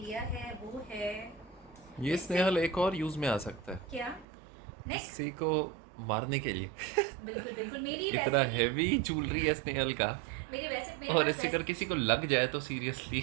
है वो है ये स्नेहल एक और यूज में आ सकता है क्या, नेक। किसी को मारने के लिए। बिल्कुल बिल्कुल, मेरी इतना वैसे ही हैवी ज्वेलरी है स्नेहल का, मेरे और पास इससे अगर वैसे किसी को लग जाए तो सीरियसली।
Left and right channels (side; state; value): left; drops out; at 4.2 s